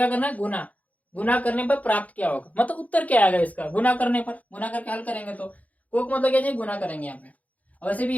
करना है, गुना, गुना करने पर प्राप्त क्या होगा, मतलब उत्तर क्या आएगा इसका, गुना करने पर, गुना करके हल करेंगे तो कोक मतलब क्या चाहिए, गुना करेंगे यहाँ पे, और वैसे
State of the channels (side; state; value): right; late; 0.072 ms